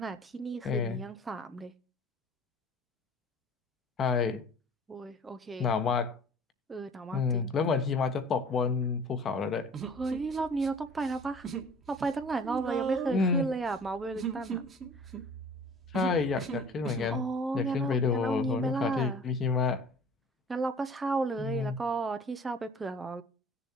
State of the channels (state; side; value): normal; both; correlation 0.47